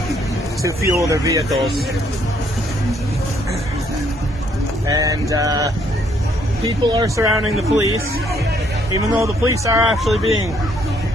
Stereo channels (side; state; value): both; normal; correlation 0.68